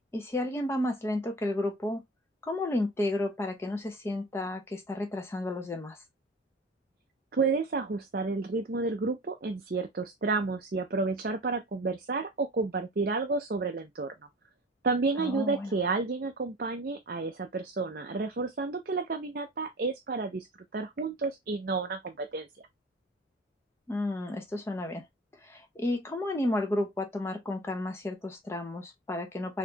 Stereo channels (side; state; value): both; normal; correlation 0.40